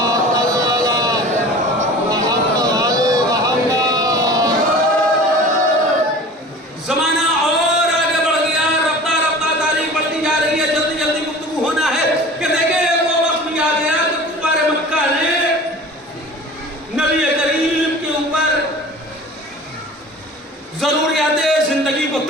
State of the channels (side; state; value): both; normal; correlation 0.40